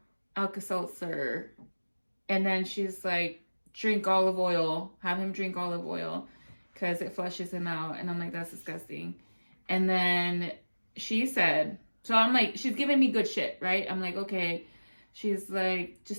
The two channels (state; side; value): inverted; both; correlation -1.00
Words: Alka-Seltzer. And then she's like, drink olive oil. Have him drink olive oil because it flushes him out. And I'm like, that's disgusting. And then she said, so I'm like, she's giving me good shit, right? I'm like, okay. She's like,